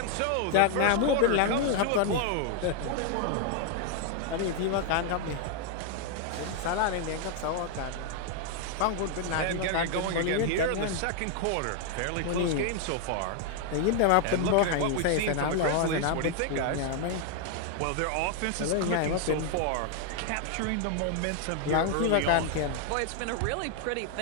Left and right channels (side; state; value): both; different; correlation 0.00